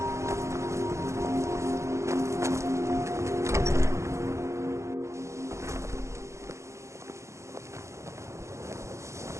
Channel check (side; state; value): left; late; 0.14 ms